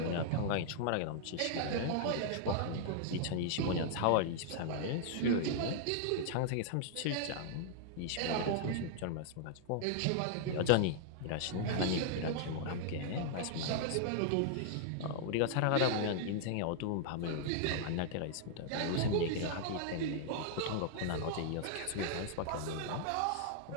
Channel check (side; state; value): both; different; correlation -0.01